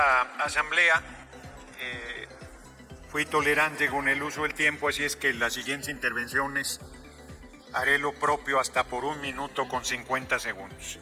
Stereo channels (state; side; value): identical; both; correlation 1.00